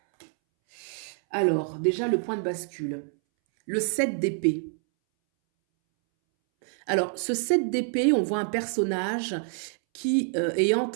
Alors, déjà le point de bascule. Le 7 d'épée. Alors, ce 7 d'épée, on voit un personnage qui est en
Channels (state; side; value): silent; left; 60 dB below the other